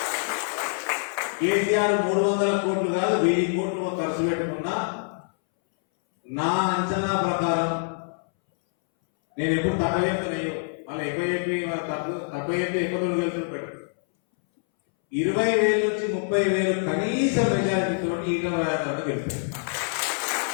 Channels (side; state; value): right; silent; 61 dB below the other